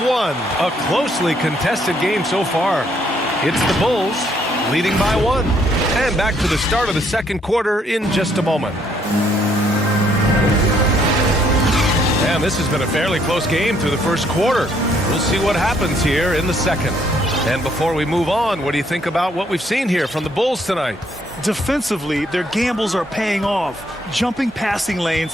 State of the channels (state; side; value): normal; both; correlation 0.69